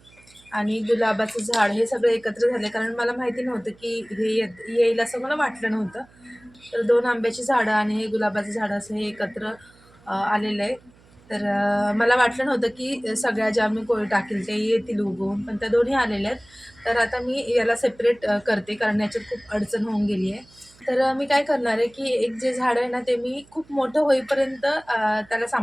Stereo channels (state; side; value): noise; right; hum, 28 dB below the sound